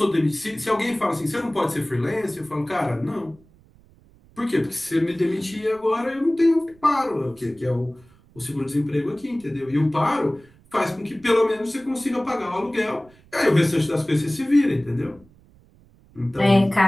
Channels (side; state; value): right; noise; rumble, 28 dB below the sound